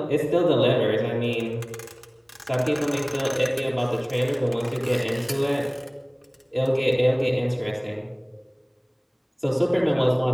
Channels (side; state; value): both; identical; correlation 1.00